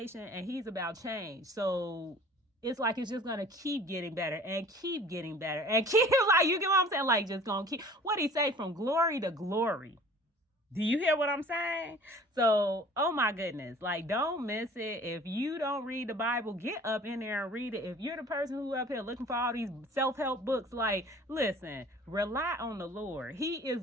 and he's about change. So it's like it's just gonna keep getting better and keep getting better and keep, like, you get what I'm saying? Like, just gonna keep, what he say, from glory to glory. Do you hear what I'm saying? So, oh my goodness, like, don't miss it. If you don't read the Bible, get up in there and read it. If you're the person who up here looking for all these self-help books, like, listen, rely on the Lord. He is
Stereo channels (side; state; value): both; normal; correlation 0.48